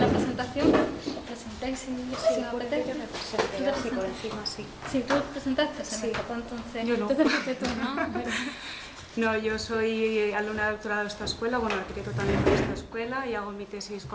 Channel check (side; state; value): both; identical; correlation 1.00